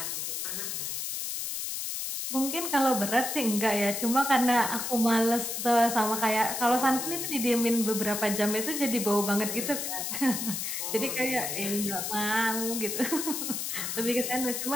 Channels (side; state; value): left; noise; hiss, 3 dB below the sound